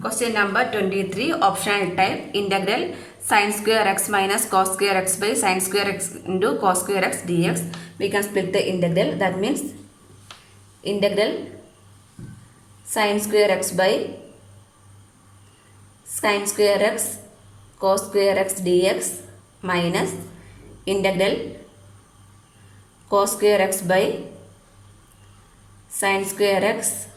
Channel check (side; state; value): both; identical; correlation 1.00